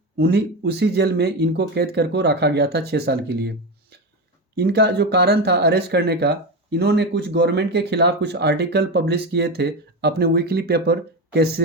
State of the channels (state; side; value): normal; both; correlation 0.18